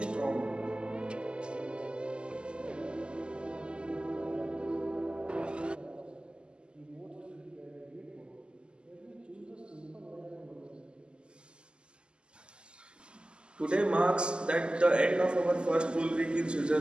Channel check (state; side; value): late; left; 0.049 ms